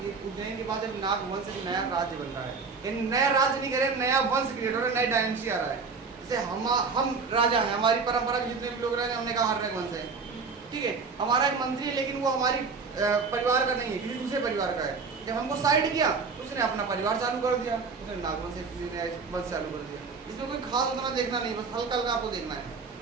उज्जैन के बाद जब नाग वंश एक नया राज्य बन रहा है, यानी नया राज्य नहीं कह रहे, नया वंश क्रिएट हो रहा है, नई डायनेस्टी आ रहा है। जैसे हम राजा हैं, हमारी परंपरा के जितने भी लोग रहे हैं, हमने कहा हर वंश है, ठीक है, हमारा एक मंत्री है लेकिन वो हमारी परिवार का नहीं है, किसी दूसरे परिवार का है। जब हमको साइड किया तो उसने अपना परिवार चालू कर दिया, उसने नागवंश वंश चालू कर दिया। इसमें कोई खास उतना देखना नहीं, बस हल्का हल्का आपको देखना है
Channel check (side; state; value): left; quieter; 4.8 dB